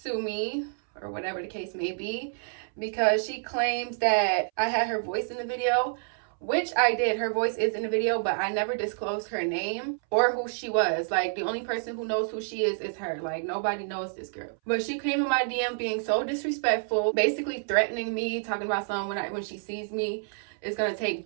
me, or whatever the case may be, because she claims that I had her voice in the video, which I did. Her voice is in the video, but I never disclosed her name or who she was. Like, the only person who knows who she is her. Like, nobody knows this girl. But she came in my DM being so disrespectful, basically threatening me, talking about something when she sees me, it's gonna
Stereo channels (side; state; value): left; silent; 59 dB below the other